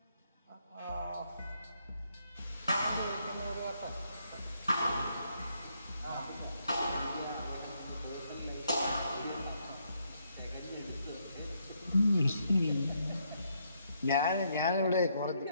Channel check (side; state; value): both; inverted; correlation -0.75